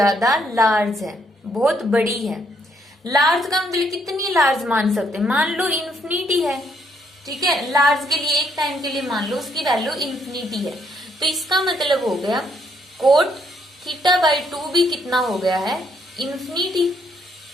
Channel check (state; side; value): normal; both; correlation 0.72